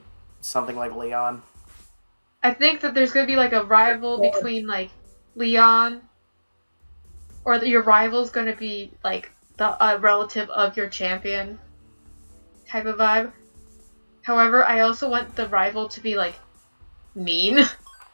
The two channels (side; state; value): both; inverted; correlation -1.00